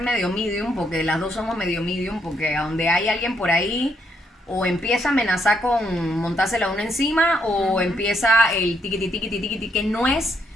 medium, porque las dos somos medio medium, porque a donde hay alguien por ahí, o empieza a amenazar con montársela uno encima, o empieza el tiquiti, tiquiti, tiquiti, que no es...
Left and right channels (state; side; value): normal; both; correlation 0.75